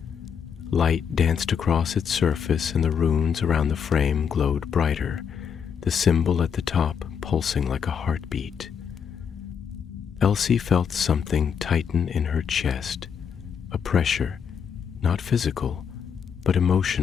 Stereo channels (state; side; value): quieter; right; 7.2 dB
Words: Light danced across its surface and the runes around the frame glowed brighter, the symbol at the top pulsing like a heartbeat. Elsie felt something tighten in her chest, a pressure, not physical, but